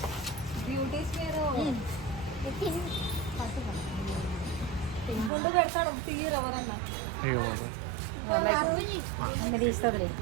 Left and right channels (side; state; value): left; drops out; at 5.3 s